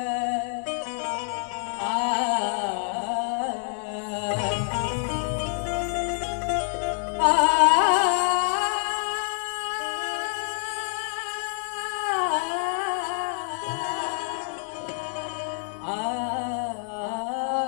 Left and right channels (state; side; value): silent; right; 60 dB below the other